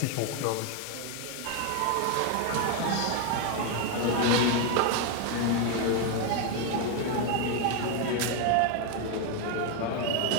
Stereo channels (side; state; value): both; different; correlation 0.01